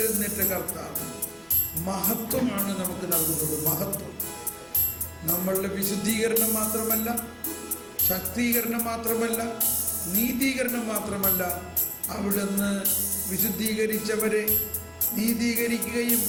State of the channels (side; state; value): both; identical; correlation 1.00